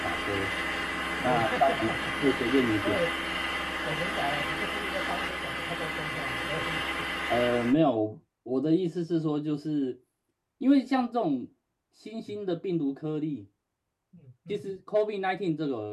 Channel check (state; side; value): identical; both; correlation 1.00